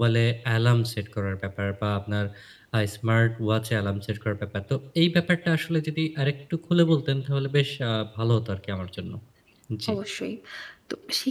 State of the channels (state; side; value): identical; both; correlation 1.00